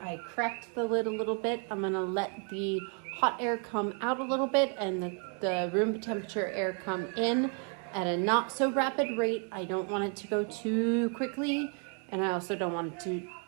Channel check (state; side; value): quieter; left; 39.8 dB